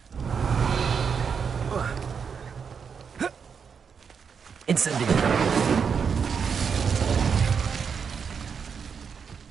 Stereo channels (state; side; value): quieter; left; 6.4 dB